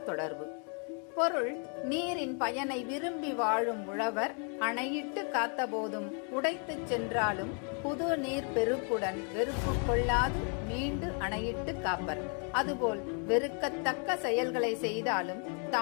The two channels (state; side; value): quieter; right; 39.7 dB